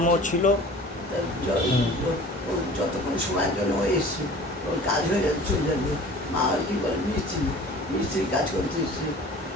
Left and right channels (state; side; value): normal; both; correlation 0.43